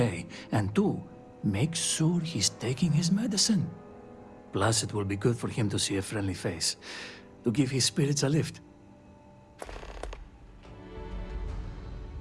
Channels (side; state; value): both; identical; correlation 1.00